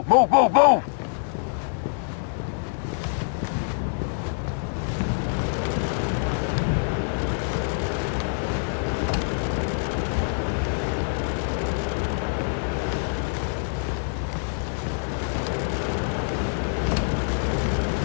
Move, move, move!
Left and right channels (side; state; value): right; silent; digital silence